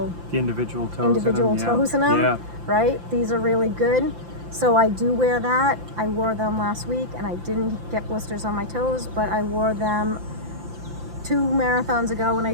The individual toes individual in them. toes in them, Yeah. right? These are really good. So I do wear that. I wore them last week and I didn't get blisters on my toes, but I wore them 2 marathons ago and I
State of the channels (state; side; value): late; left; 5.8 ms